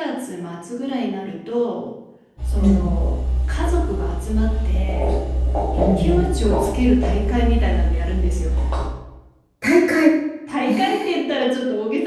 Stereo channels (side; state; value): both; identical; correlation 1.00